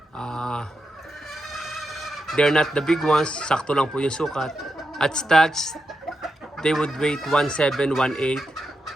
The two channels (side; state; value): both; normal; correlation 0.86